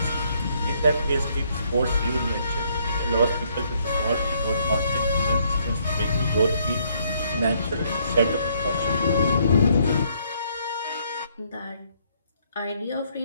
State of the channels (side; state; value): both; inverted; correlation -0.68